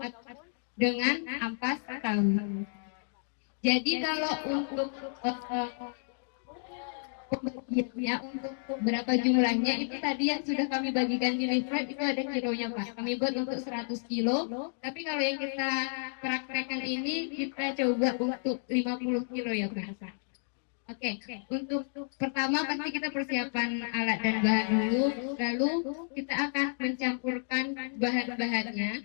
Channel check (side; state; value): right; silent; digital silence